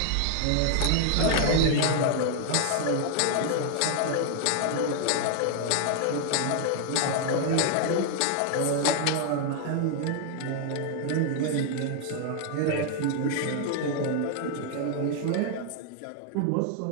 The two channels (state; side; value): different; both; correlation 0.00